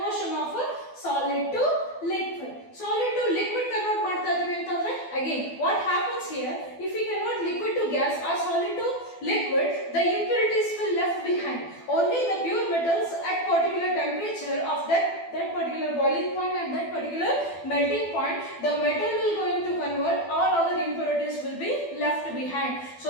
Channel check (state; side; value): late; right; 12 ms